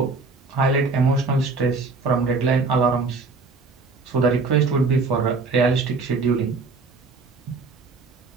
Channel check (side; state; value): left; quieter; 4.1 dB